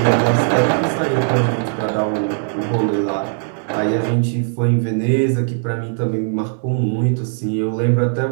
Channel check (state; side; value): silent; left; digital silence